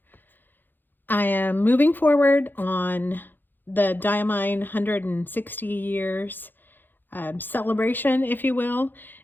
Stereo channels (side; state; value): right; late; 0.091 ms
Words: I am moving forward on the Diamine 160 years celebration, if you will.